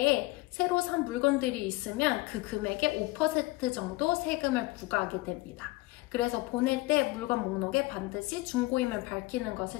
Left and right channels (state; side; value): quieter; right; 21.6 dB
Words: 새로 산 물건들이 있으면 그 금액의 5% 정도 세금을 부과하게 됩니다. 그래서 보낼 때 물건 목록에 반드시 중고임을 밝히는